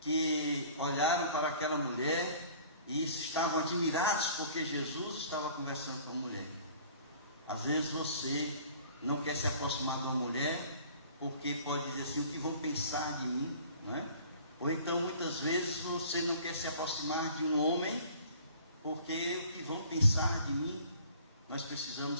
que olharam para aquela mulher e estavam admirados porque Jesus estava conversando com a mulher. Às vezes você não quer se aproximar de uma mulher porque pode dizer assim: o que vão pensar de mim, não é? Ou então, muitas vezes, você não quer se aproximar de um homem, porque o que vão pensar de mim? Nós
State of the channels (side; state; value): both; inverted; correlation -0.49